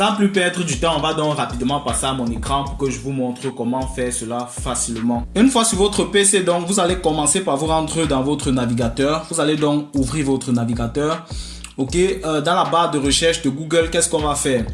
plus perdre du temps, on va donc rapidement passer à mon écran pour que je vous montre comment faire cela facilement. Une fois sur votre PC, donc vous allez commencer par vous rendre dans votre navigateur. Vous allez donc ouvrir votre navigateur. Ok, dans la barre de recherche de Google, qu'est-ce qu'on va faire?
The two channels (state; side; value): identical; both; correlation 1.00